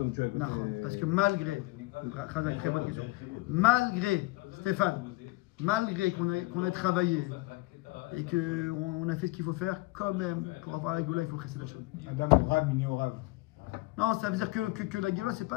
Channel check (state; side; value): quieter; right; 21.7 dB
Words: tu as écouté... Parce que malgré, très bonne question, malgré, Stéphane, malgré qu'on ait travaillé et qu'on a fait ce qu'il faut faire, quand même, pour avoir la Géoula, il faut chesed d'Hachem. Adam au Rav, mini au Rav. Non, ça veut dire que la Géoula, c'est